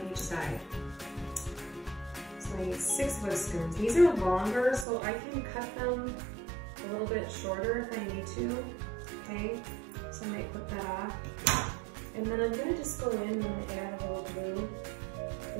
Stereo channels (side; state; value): left; drops out; at 4.9 s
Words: each side. So I need 6 whiskers. These are longer, so I can cut them a little bit shorter if I need to, okay? So I might put that off. And then I'm gonna just go in and I'm gonna add a little glue